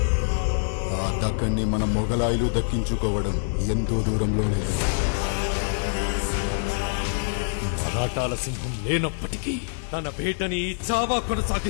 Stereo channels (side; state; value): right; silent; digital silence